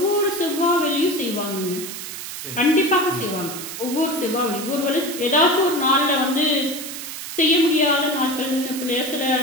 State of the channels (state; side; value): noise; right; hiss, 8 dB below the sound